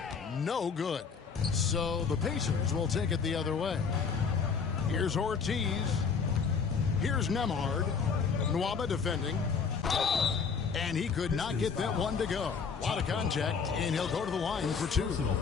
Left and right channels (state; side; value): quieter; right; 5.7 dB